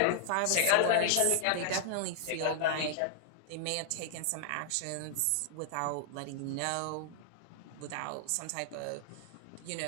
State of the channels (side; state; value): both; different; correlation 0.00